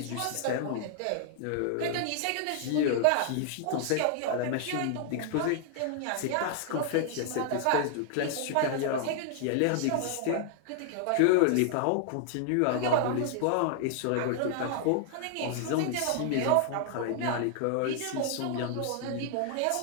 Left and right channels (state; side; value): different; both; correlation 0.00